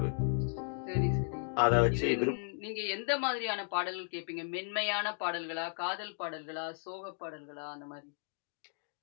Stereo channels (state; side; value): silent; right; 54 dB below the other